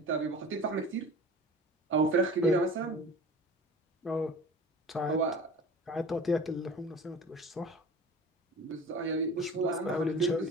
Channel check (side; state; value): both; normal; correlation 0.39